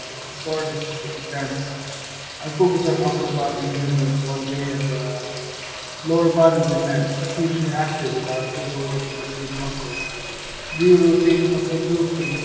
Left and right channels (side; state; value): both; identical; correlation 1.00